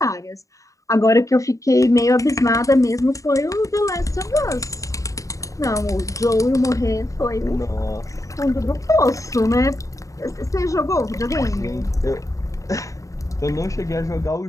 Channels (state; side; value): late; right; 0.16 ms